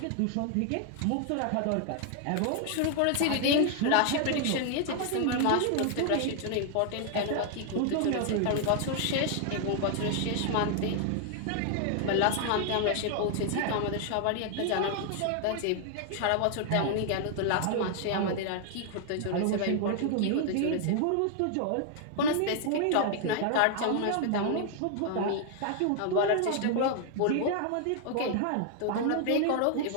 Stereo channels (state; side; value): different; both; correlation 0.00